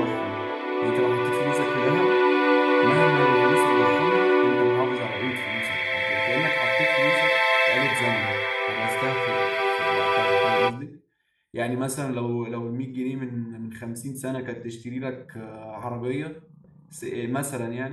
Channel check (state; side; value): identical; both; correlation 1.00